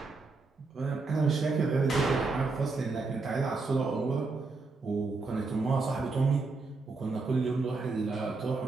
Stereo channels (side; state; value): left; quieter; 3.9 dB